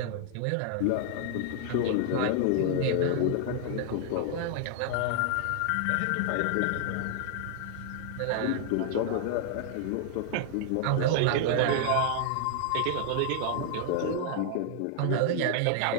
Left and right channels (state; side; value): different; both; correlation 0.00